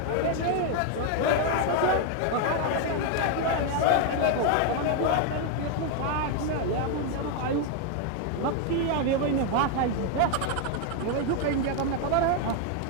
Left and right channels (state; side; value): different; both; correlation 0.01